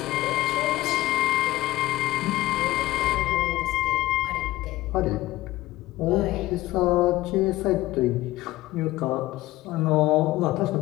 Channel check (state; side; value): quieter; right; 16.9 dB